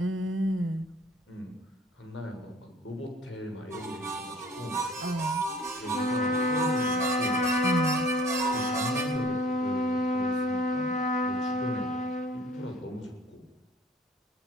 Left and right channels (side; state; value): both; normal; correlation 0.51